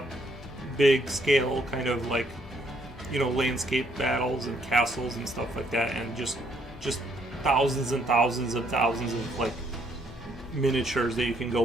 big scale, kind of like landscape battles and castles and stuff like that, and just thousands and thousands of like miniatures that you can go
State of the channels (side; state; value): both; normal; correlation 0.69